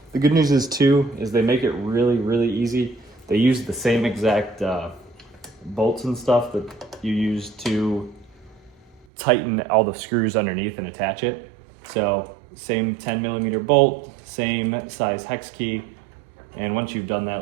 The good news is they make it really, really easy. They use the same exact bolts and stuff that you use to tighten all the screws underneath and attach it. So same 10mm bolt, same size hex key. And once you've done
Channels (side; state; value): left; drops out; at 9.1 s